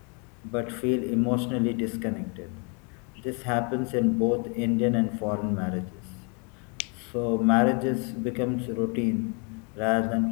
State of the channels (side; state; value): right; quieter; 35.6 dB